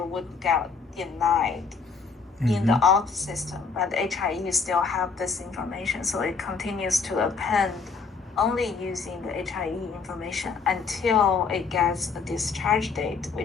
would get denied in the auth system, but HIE still have this information, so it continues to append only using the HIE information until it gets a discharge date,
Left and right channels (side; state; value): right; quieter; 5.0 dB